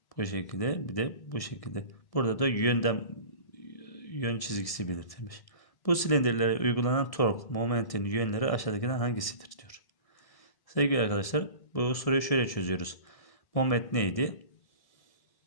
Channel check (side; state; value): right; late; 1.7 ms